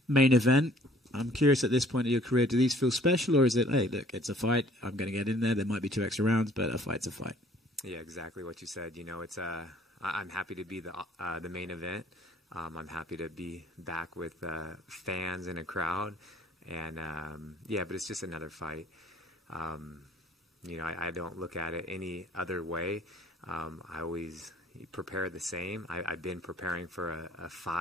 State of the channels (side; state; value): both; normal; correlation 0.56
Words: Main event. I'm curious at this point of your career, do these feel special, or is it, hey, look, it's a fight. I'm going to get in there. There might be 2 extra rounds, but a fight's a fight. Yeah, exactly what you said. You know, it's I'm happy to be the main event. I'm happy to be back with fans and a crowd, and yeah, but it's just another fight. You know, I don't look at it any other way. I always prepare the same. I've been preparing for a